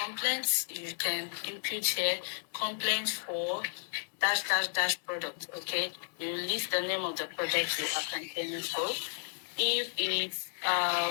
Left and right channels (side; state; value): right; silent; digital silence